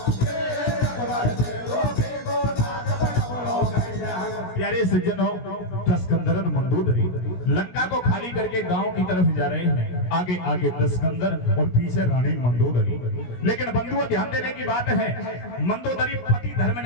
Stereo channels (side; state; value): right; late; 17 ms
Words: प्यारे सज्जनों, दस्कंदर और मंदोदरी लंका को खाली करके गांव की तरफ जा रहे हैं। आगे आगे दस्कंदर और पीछे रानी मंदोदरी। लेकिन बंधुओं, ध्यान देने की बात है, मंदोदरी पति धर्म